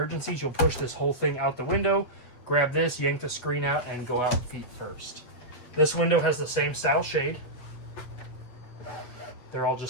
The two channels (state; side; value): late; right; 7.9 ms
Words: you'll push this whole thing out the window, grab this, yank the screen out, and go out feet first. This window has the same style shade. They're all